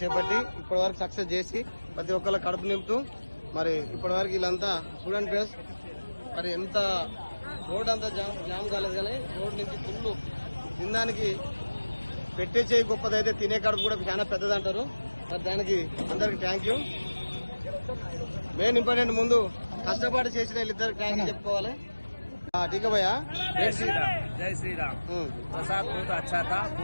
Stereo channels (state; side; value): inverted; both; correlation -1.00